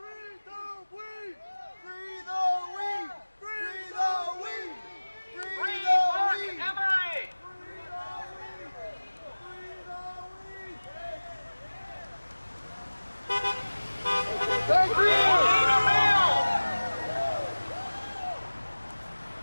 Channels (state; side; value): inverted; both; correlation -1.00